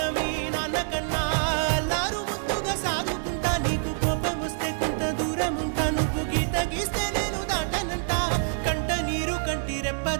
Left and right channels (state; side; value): silent; left; digital silence